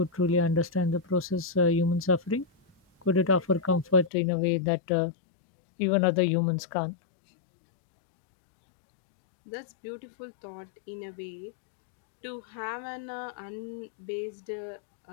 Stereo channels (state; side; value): drops out; right; at 4.1 s